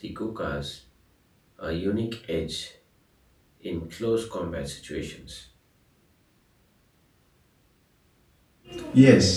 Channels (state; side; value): identical; both; correlation 1.00